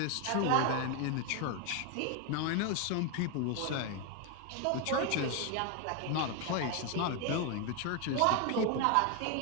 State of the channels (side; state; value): both; different; correlation 0.01